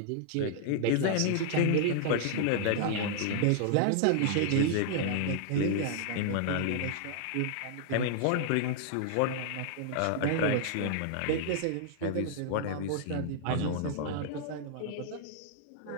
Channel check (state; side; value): different; both; correlation -0.01